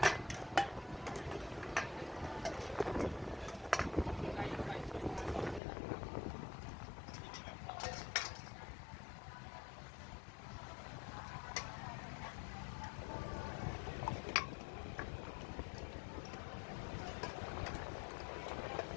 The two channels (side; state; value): right; drops out; at 5.6 s